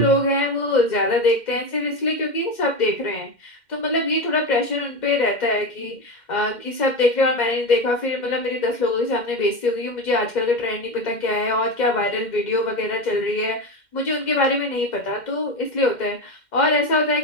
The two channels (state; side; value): late; right; 2.1 ms